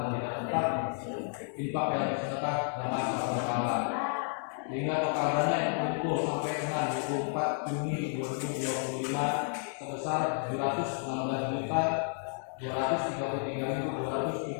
tidak tetap, infak yang bersedekah dan masa berkala. Sehingga total dana yang terkumpul sampai dengan 24 Juni 2025 sebesar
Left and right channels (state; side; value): silent; right; 57 dB below the other